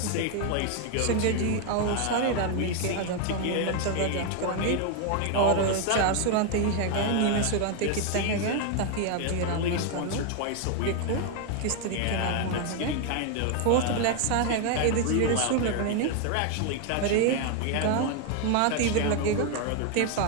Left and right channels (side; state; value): both; different; correlation 0.01